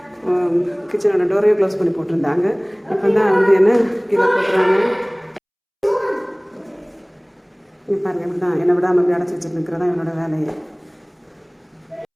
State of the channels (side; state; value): both; identical; correlation 1.00